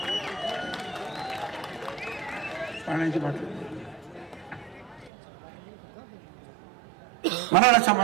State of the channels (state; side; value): drops out; left; at 5.1 s